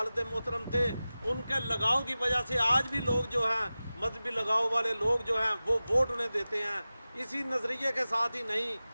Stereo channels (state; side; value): inverted; both; correlation -0.96